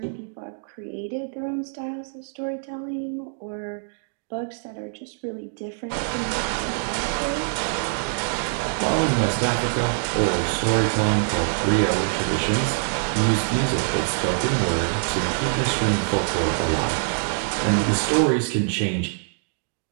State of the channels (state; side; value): silent; left; digital silence